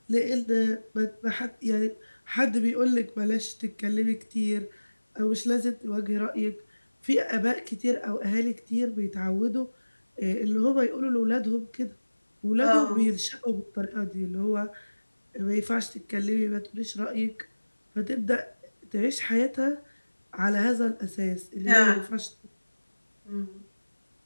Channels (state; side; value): inverted; both; correlation -1.00